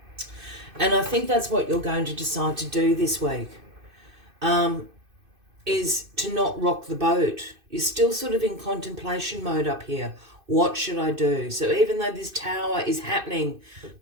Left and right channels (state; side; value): late; left; 2.6 ms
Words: And I think that's what you're going to decide to do this week, is to not rock the boat. You're still sort of in contemplation mode up here. What should I do? So even though this Tower is happening